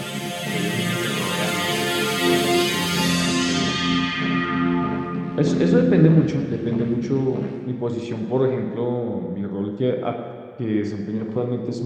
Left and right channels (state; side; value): identical; both; correlation 1.00